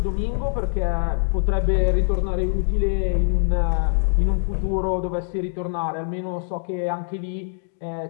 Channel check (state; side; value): silent; right; digital silence